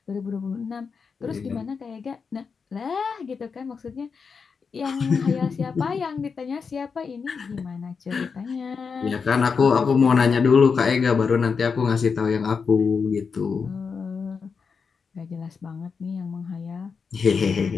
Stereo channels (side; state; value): right; quieter; 5.5 dB